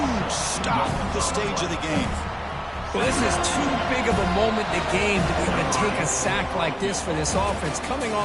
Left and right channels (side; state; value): both; identical; correlation 1.00